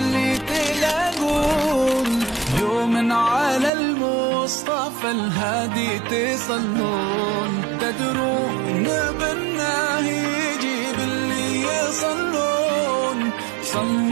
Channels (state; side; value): drops out; left; at 3.7 s